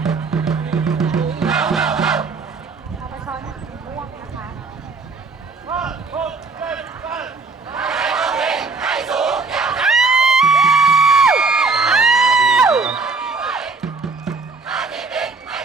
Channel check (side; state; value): left; quieter; 4.2 dB